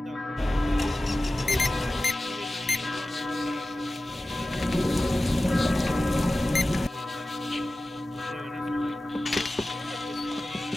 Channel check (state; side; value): normal; both; correlation 0.95